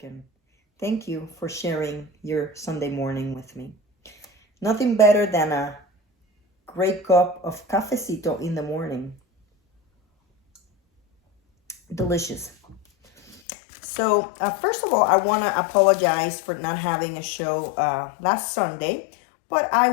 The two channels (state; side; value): drops out; right; at 13.4 s